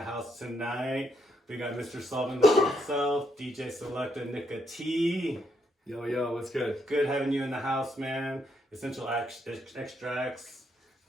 house tonight. We got Mr. Solvent himself, DJ Selecta Nikka T. Yo, what's good? Good having you in the house, man. Essential extracts,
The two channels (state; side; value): normal; both; correlation 0.76